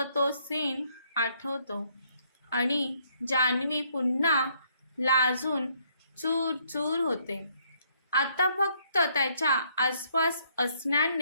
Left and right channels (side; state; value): both; inverted; correlation -0.69